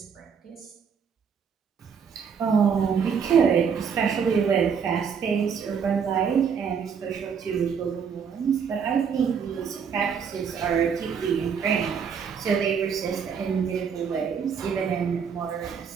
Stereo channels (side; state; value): left; quieter; 6.7 dB